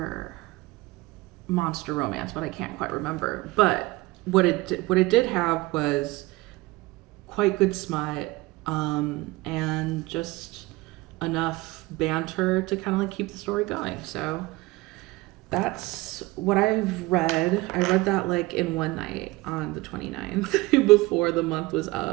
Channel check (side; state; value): left; quieter; 21.2 dB